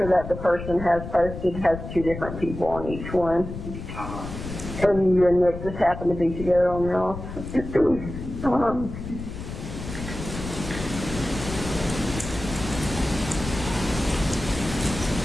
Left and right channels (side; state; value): left; noise; rumble, 9 dB below the sound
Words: that the person has posted has 2 different people on each one. And you and Nick just happen to be together on yours.